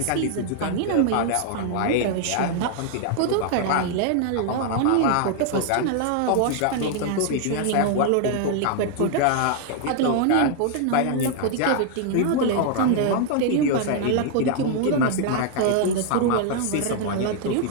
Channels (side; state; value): both; different; correlation 0.00